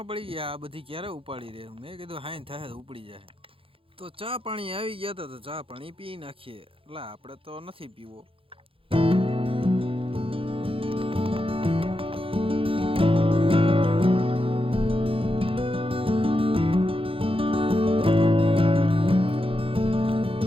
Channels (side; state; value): left; late; 0.26 ms